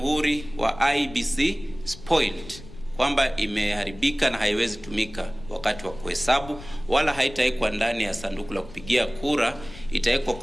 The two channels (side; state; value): left; noise; rumble, 16 dB below the sound